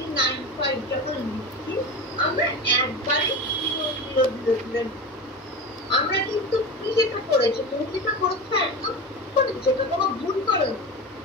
যখন লিখছি, আমরা একবারে 0 0 0 আমরা কিন্তু কি যেটা করেছি, তুমি যেটা করেছো একদম করেছো, এটা কোনো ভুল করেনি,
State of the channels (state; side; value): normal; both; correlation 0.26